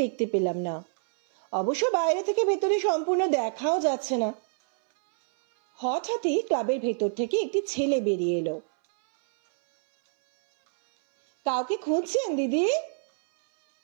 দেখতে পেলাম না। অবশ্য বাইরে থেকে ভেতরে সম্পূর্ণ দেখাও যাচ্ছে না। হঠাৎই ক্লাবের ভেতর থেকে একটি ছেলে বেরিয়ে এলো। কাউকে খুঁজছেন দিদি?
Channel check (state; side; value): silent; left; 61 dB below the other